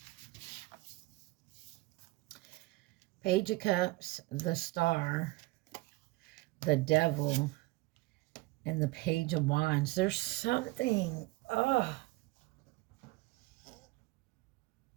Page of Cups, the Star, the Devil, and the Page of Wands. There's something,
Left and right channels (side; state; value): left; quieter; 20.9 dB